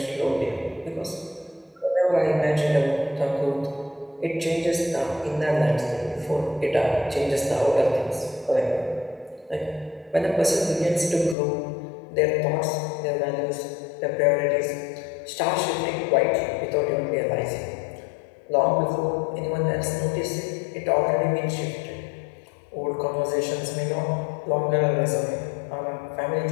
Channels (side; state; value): right; drops out; at 11.4 s